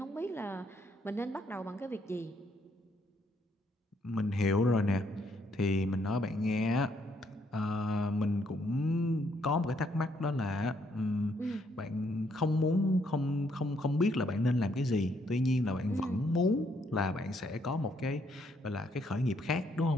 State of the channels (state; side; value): normal; both; correlation 0.71